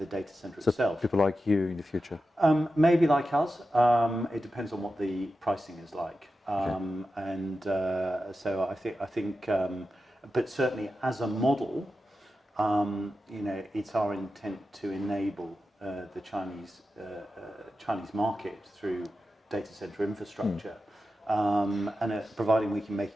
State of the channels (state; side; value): normal; both; correlation 0.91